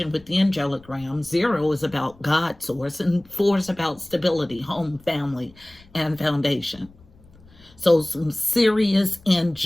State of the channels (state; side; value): noise; left; rumble, 26 dB below the sound